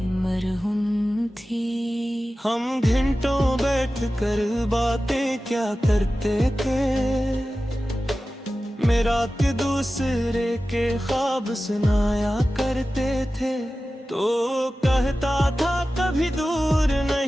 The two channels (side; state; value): both; normal; correlation 0.95